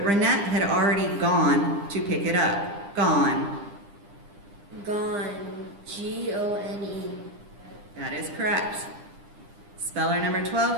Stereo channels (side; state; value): left; late; 9.9 ms